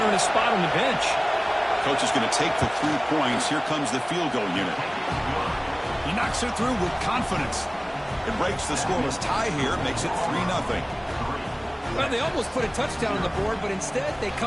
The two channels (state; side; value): identical; both; correlation 1.00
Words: earn a spot on the bench. Coach is going to take the 3 points. Here comes the field goal unit. He knocks it through with confidence. It breaks the scoreless tie here, makes it 3-0. Well, they almost put a touchdown on the board, but instead they